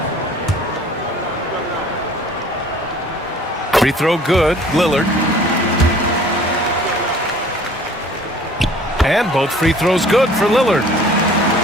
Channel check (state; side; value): normal; both; correlation 0.51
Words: Free throw good, Lillard. And both free throws good for Lillard.